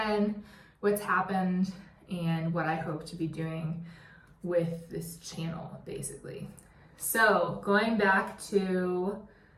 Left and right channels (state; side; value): identical; both; correlation 1.00